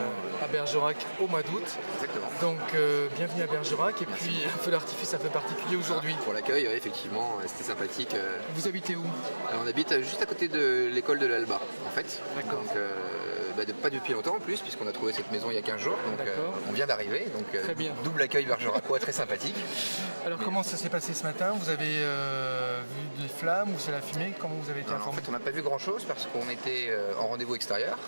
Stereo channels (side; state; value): both; inverted; correlation -1.00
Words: à Bergerac au mois d'août. Exactement. Donc bienvenue à Bergerac. Et merci puis un feu d'artifice un peu particulier aujourd'hui. Pour l'accueil, oui, effectivement, c'était sympathique. Vous habitez où? Alors, on habite juste à côté de l'école de l'Alba, en fait. D'accord. Donc, pas depuis longtemps en plus, puisqu'on a trouvé cette maison il y a 15 jours. Donc on vient d'arriver. Donc très bien. Double accueil bergeracois, très sympathique. Alors comment ça s'est passé ce matin? Vous avez vu des flammes ou c'est la fumée? Comment vous avez été informé? En fait, on n'a pas vu grand chose parce qu'on était en rendez-vous extérieur,